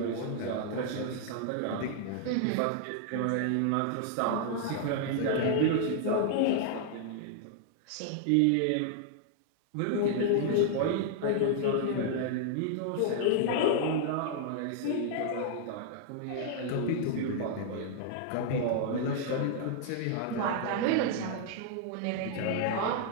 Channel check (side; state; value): both; different; correlation -0.01